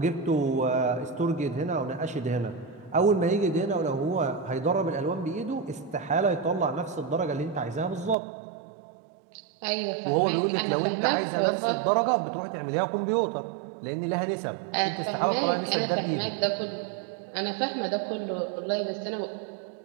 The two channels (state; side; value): drops out; left; at 8.2 s